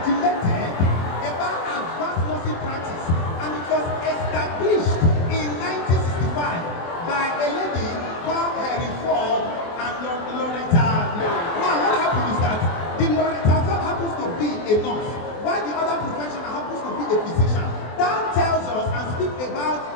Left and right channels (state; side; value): late; right; 24 ms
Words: about advanced nursing practice, and it was established in 1965 by a lady called Henry Ford and Loretta. Now, what happened is that the Loretta Ford happens to be a nurse, while the other professional happens to be a physician. That tells us and speaks about